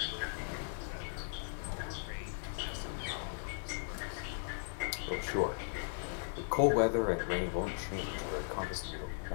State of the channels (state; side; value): silent; right; digital silence